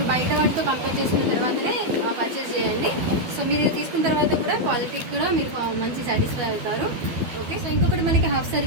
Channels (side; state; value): left; late; 13 ms